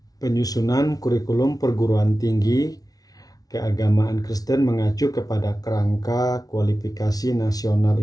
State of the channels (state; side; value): late; right; 0.18 ms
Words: Penyusunan kurikulum perguruan tinggi keagamaan Kristen mengacu kepada Kerangka Kualifikasi Nasional